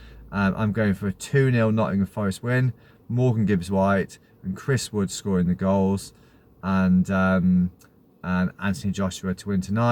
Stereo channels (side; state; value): both; identical; correlation 1.00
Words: I'm going for a 2-0 Nottingham Forest win. Morgan Gibbs-White and Chris Wood scoring the goals, and Anthony Joshua to win